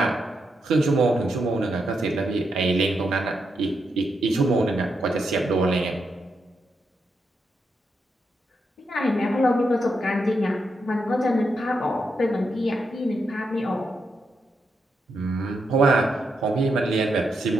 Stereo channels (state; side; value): normal; both; correlation 0.83